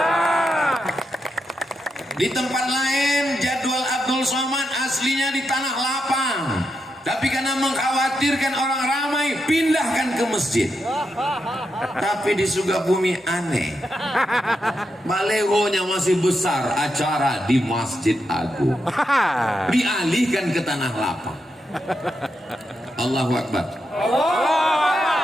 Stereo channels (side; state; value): both; normal; correlation 0.84